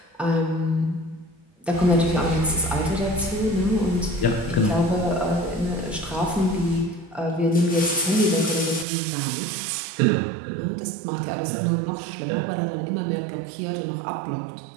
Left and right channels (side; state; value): left; drops out; at 8.8 s